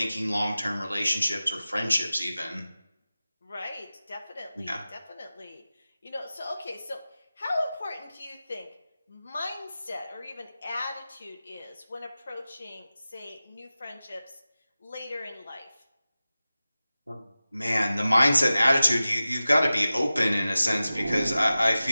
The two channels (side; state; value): both; inverted; correlation -0.95